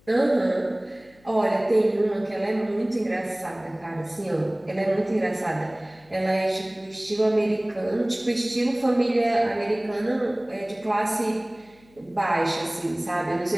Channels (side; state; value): left; noise; hum, 29 dB below the sound